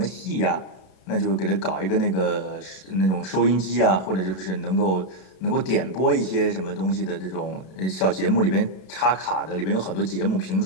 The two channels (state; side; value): late; right; 32 ms